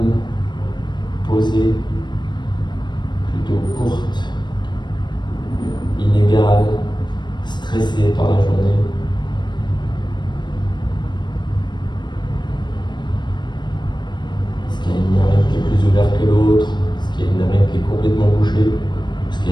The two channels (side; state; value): right; late; 0.22 ms